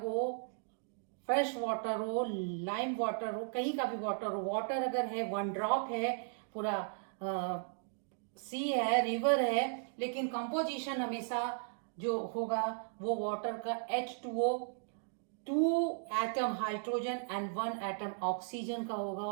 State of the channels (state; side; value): silent; left; digital silence